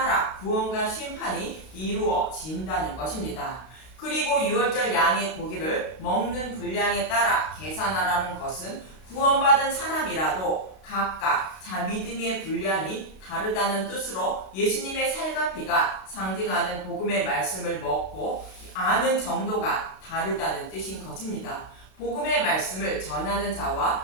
구원과 심판이 이루어진다는 것입니다. 그리고 유월절 양의 고기를 먹는 분량에 따라 계산하라는 것은 구원받은 사람이라도 각각 자 믿음의 분량이 다르다는 뜻으로 예수님의 살과 피가 상징하는 복음의 말씀을 먹고 아는 정도가 다르다는 뜻인 것입니다. 복음의 말씀을 전하는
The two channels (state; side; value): late; right; 32 ms